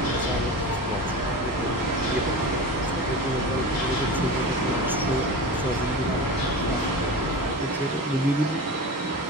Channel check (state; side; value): normal; both; correlation 0.30